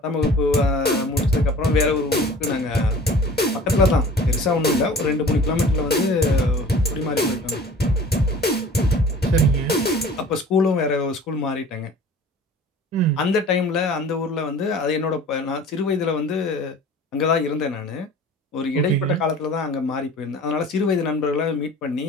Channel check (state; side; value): normal; both; correlation 0.44